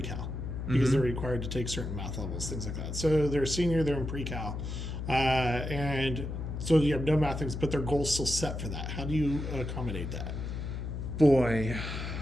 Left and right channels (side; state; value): left; noise; hum, 5 dB below the sound